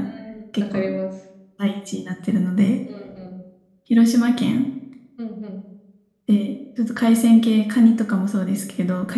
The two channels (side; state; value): both; identical; correlation 1.00